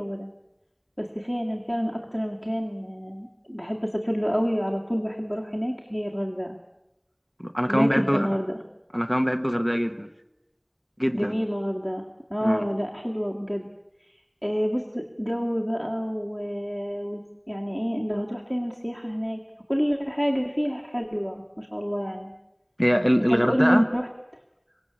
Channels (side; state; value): both; identical; correlation 1.00